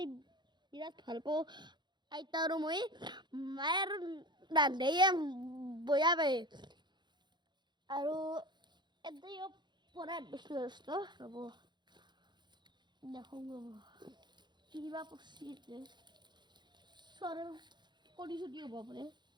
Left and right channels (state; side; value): late; left; 0.21 ms